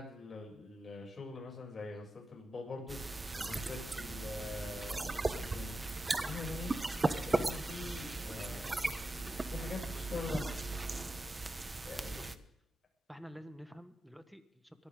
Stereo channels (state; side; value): normal; both; correlation 0.91